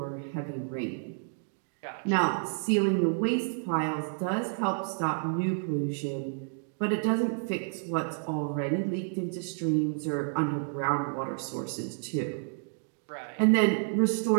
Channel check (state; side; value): silent; left; 58 dB below the other